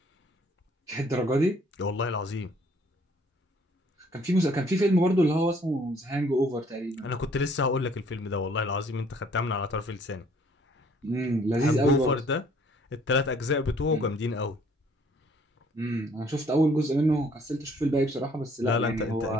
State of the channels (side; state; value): both; normal; correlation 0.60